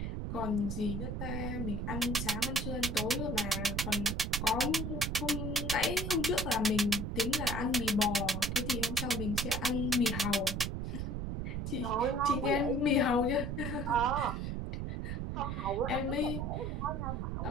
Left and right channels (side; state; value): right; noise; rumble, 3 dB below the sound